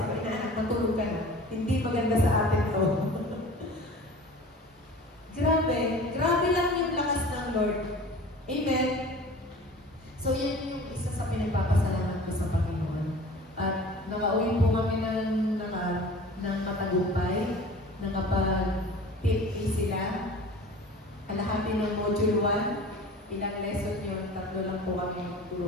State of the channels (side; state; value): both; normal; correlation 0.41